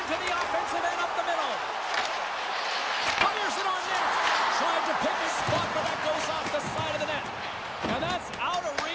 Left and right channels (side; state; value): both; identical; correlation 1.00